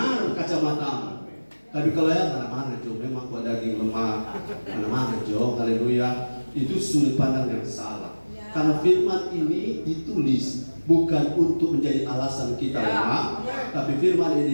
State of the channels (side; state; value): both; inverted; correlation -1.00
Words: kacamata. Tapi kalau ya mana-mana Jo, memang kok daging lemah, mana-mana Jo, haleluya. Itu sudut pandang yang salah. Karena firman ini ditulis bukan untuk menjadi alasan kita lemah, tapi firman